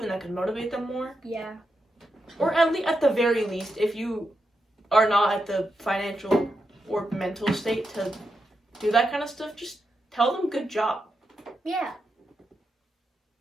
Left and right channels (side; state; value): both; normal; correlation 0.86